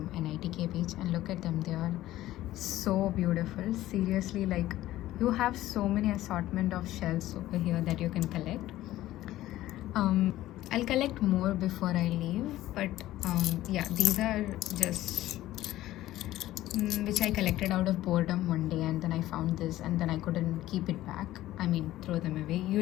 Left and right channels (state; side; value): quieter; right; 15.1 dB